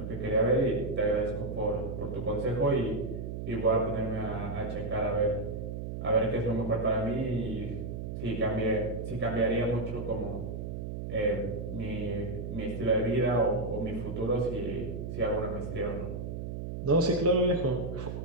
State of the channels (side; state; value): right; noise; hum, 5 dB below the sound